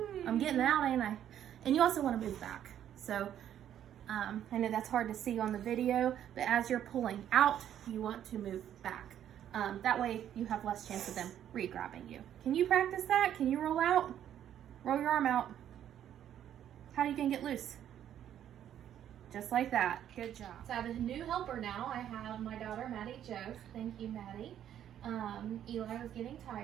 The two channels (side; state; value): left; quieter; 10.5 dB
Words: I'm getting out, ain't I? And you also want to move back. So I know that's hard to see on the video, but as you're pulling out, you want to move back. That way you have less chance of them re-grabbing you. Can you practice that? Can you roll out? Roll your arm out. How are you going to get loose? Just like that. Good job. So I have a new helper now. I have my daughter, Maddie Jo. Thank you, Maddie. Eli was getting